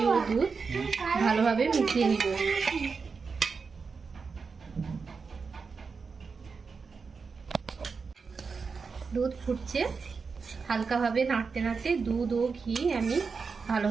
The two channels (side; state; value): left; quieter; 5.0 dB